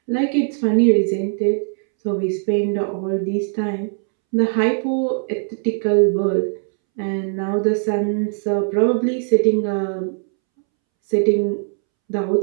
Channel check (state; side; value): silent; left; 66 dB below the other